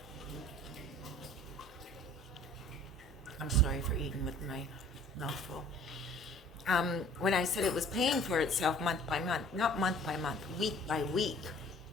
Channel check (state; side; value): normal; both; correlation 0.51